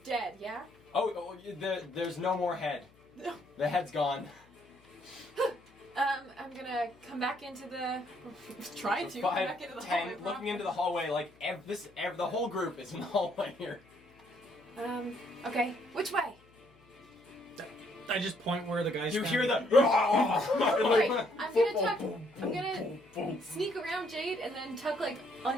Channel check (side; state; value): left; noise; hum, 28 dB below the sound